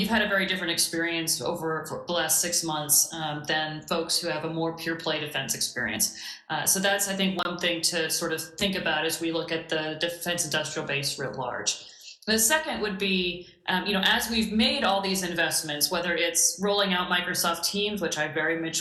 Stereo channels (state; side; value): identical; both; correlation 1.00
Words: had a very different experience over for the last 6 months than folks who have a more pure play defense experience. So that's, I think, one thing to sort of think about as we look at the defense industrial base writ large. The second would be, as we've made all these investments, whether it's rolling out Microsoft Teams, which I very